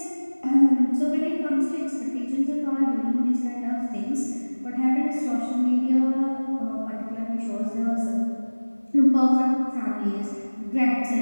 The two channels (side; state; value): both; inverted; correlation -1.00